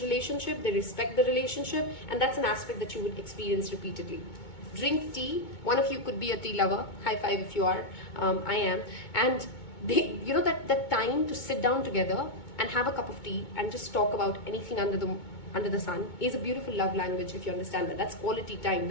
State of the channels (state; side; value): late; right; 2.2 ms